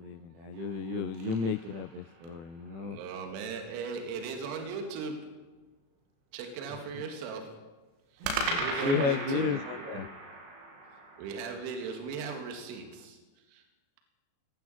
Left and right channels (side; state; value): left; late; 36 ms